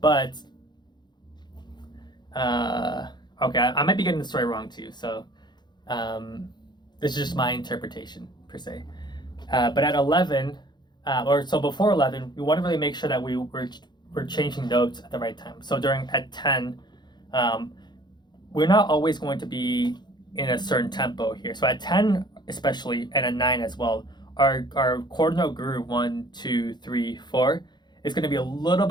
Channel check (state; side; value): late; right; 0.21 ms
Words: But, okay, I might be getting the story wrong too. So this is just my interpretation per se. But at 11, so before 11, we want to really make sure that we're changing notes at the right time. So at 10, we're not always going to be in a certain tempo here. So at 10 especially, and at 9 as well, our quarter note groove 1, 2, 3, 4 is going to be a little